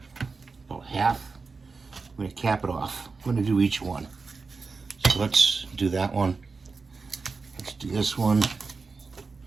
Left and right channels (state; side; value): quieter; left; 4.4 dB